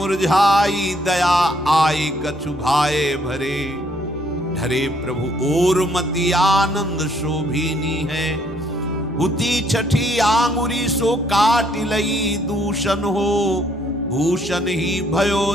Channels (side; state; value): both; normal; correlation 0.67